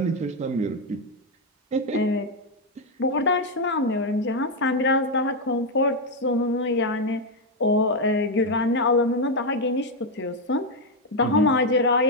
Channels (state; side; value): normal; both; correlation 0.04